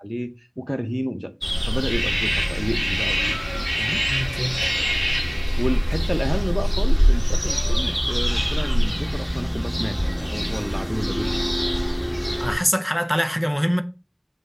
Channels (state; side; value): identical; both; correlation 1.00